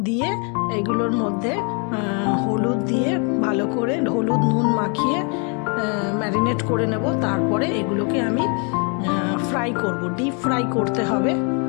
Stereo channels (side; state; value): right; quieter; 36.4 dB